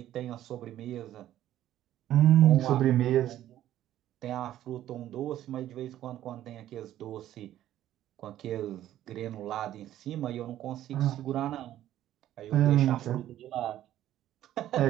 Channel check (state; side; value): quieter; left; 12.7 dB